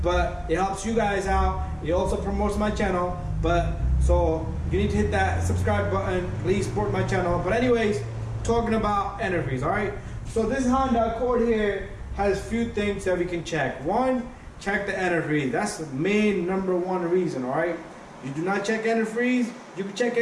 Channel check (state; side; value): identical; both; correlation 1.00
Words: but it helps you guys out. It also promotes my channel, but so you need to hit that subscribe button. Please support my channel. But anyways, talking about antifreeze, alright? So this Honda Accord here has few things that we can check. One, check the antifreeze. That's the main number one reason, alright? You do not check antifreeze, you can check